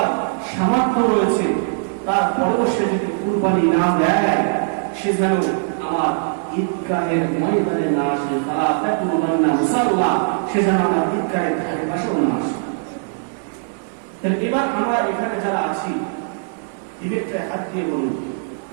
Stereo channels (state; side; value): silent; left; digital silence